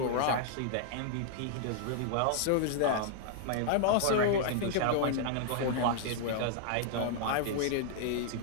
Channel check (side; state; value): both; different; correlation -0.01